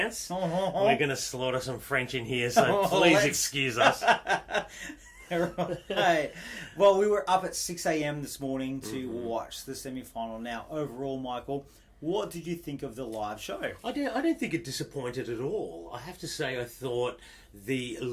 We're going to slaughter some French in here, so please excuse us. Right. Well, we were up at 6 a.m. this morning to watch the semi-final. Now, overall, Michael, what did you think of the live show? I don't think it disappointed at all. I have to say, I thought the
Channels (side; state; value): both; identical; correlation 1.00